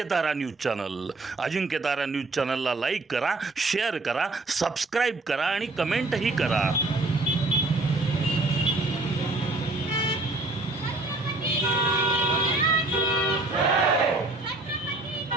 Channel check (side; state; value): left; quieter; 3.1 dB